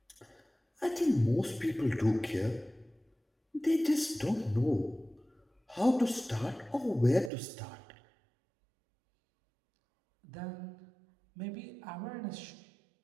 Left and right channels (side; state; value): left; drops out; at 7.3 s